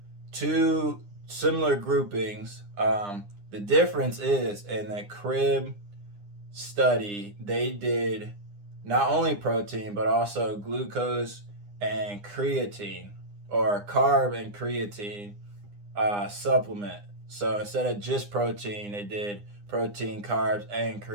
two similar groupings. The difference is in the Cribb study, they did not only protein, but also glucose and creatine, or carb and creatine supplement. So instead of just protein, they did protein, carbs, and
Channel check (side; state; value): left; late; 9.8 ms